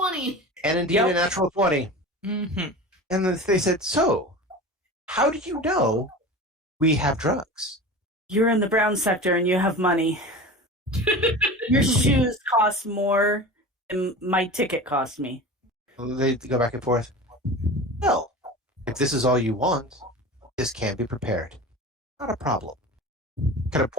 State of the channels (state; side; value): normal; both; correlation 0.33